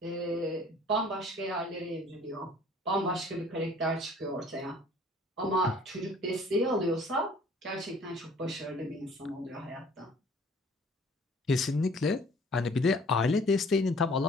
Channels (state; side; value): normal; both; correlation 0.53